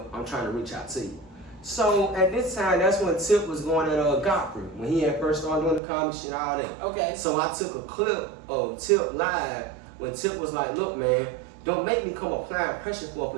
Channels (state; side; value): drops out; left; at 5.8 s